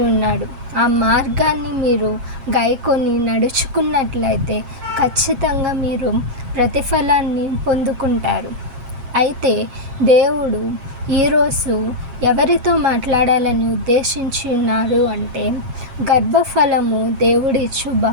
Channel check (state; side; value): late; left; 7.4 ms